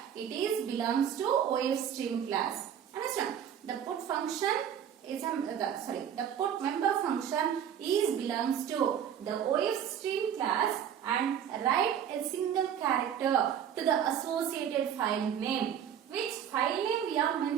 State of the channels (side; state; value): left; quieter; 9.0 dB